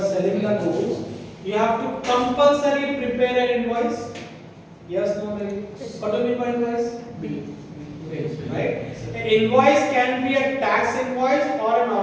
have to compulsory prepare an invoice. Yes, no, maybe. What do you mean by invoice? Bill. Right? An invoice can be a tax invoice or a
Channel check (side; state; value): both; identical; correlation 1.00